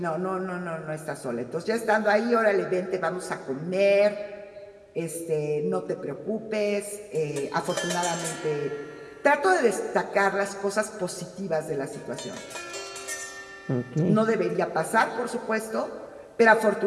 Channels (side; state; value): both; identical; correlation 1.00